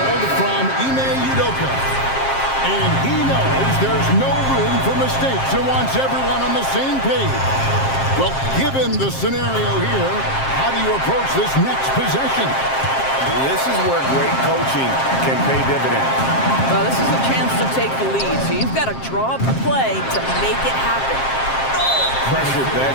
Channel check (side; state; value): right; late; 7.5 ms